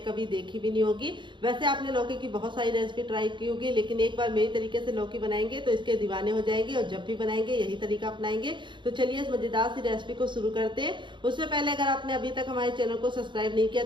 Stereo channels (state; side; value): late; left; 0.23 ms